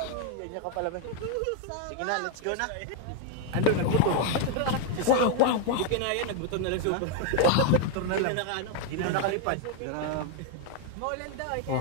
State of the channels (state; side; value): different; both; correlation 0.01